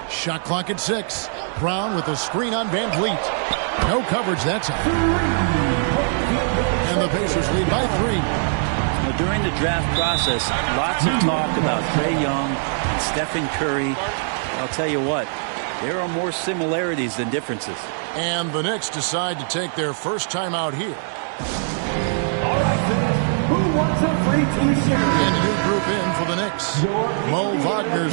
Shot clock at 6. Brown with a screen on Van Vliet. No coverage that time. And the Pacers lead by 3. Well, during the draft process, lots of talk about Trae Young and Stephen Curry. I'll tell you what, there are more similarities than differences. And the Knicks decide to take their first time out here. All right, fans, who wants a free T-shirt? And a new group in for the Knicks. Mo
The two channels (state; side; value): silent; left; digital silence